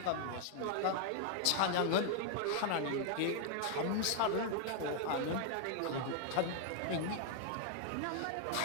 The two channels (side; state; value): both; different; correlation 0.00